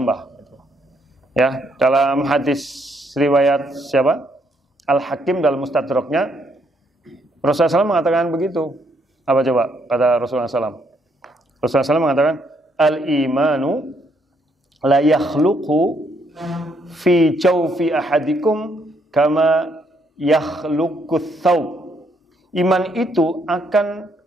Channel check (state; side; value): normal; both; correlation 0.72